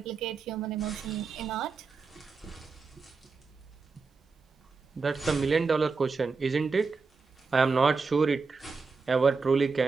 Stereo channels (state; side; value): quieter; left; 4.6 dB